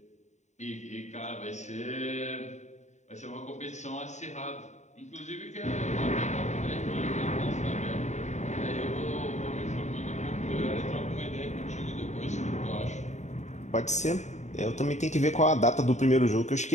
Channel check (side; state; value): right; late; 0.34 ms